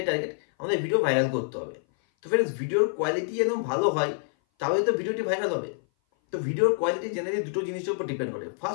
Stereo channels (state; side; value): silent; right; 57 dB below the other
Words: টার্গেট, আমাদের ভিডিও ভাইরাল করতে হবে। তো ফ্রেন্ডস, ভিডিওর কোয়ালিটি যেন ভালো হয়, তাহলে তো ভিডিওটি ভাইরাল হবে। তো ভিডিওর কোয়ালিটি জেনারেলি দুটো জিনিসের উপর ডিপেন্ড করে।